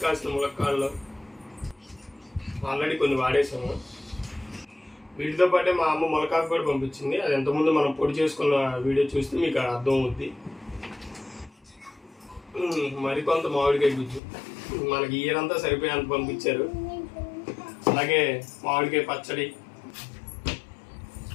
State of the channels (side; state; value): right; drops out; at 14.2 s